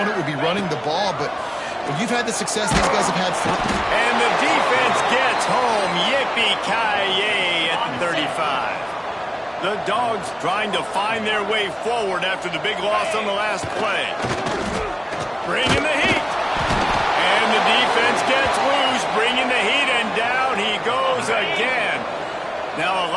would be running the ball, but when you've had the success these guys have had... And the defense gets home. Yippee-ki-yay at the 35. The Dogs trying to find their way forward after the big loss on the last play. Bringing the heat. And the defense gets loose, bringing the heat, and down he goes again. Now a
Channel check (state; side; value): identical; both; correlation 1.00